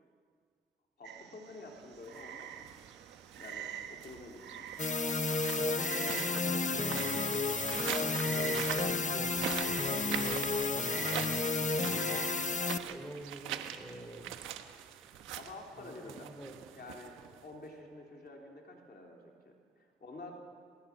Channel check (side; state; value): both; normal; correlation 0.39